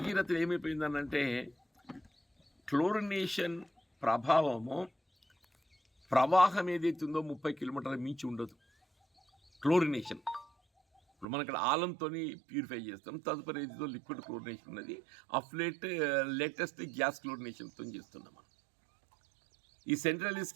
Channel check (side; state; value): left; drops out; at 11.2 s